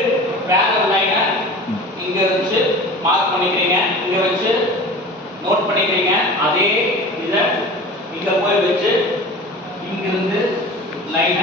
parallel line இங்க வச்சு mark பண்ணிக்கிறீங்க, இங்க வச்சு நோட் பண்ணிக்கிறீங்க. அதே இத இங்க போய் வச்சு இங்க இருந்து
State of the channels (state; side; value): normal; both; correlation 0.37